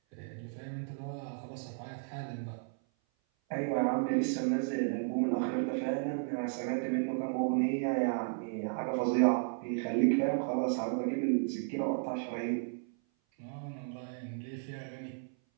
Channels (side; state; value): left; silent; 55 dB below the other